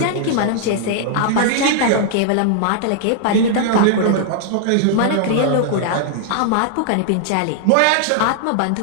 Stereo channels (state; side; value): different; both; correlation -0.01